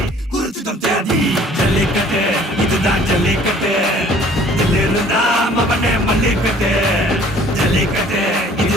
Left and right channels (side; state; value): both; normal; correlation 0.54